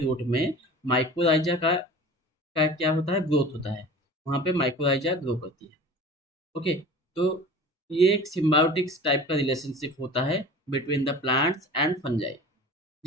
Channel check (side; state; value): both; normal; correlation 0.39